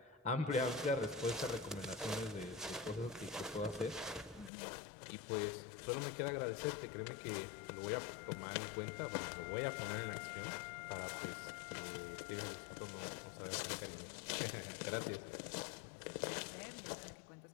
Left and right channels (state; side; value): drops out; right; at 4.5 s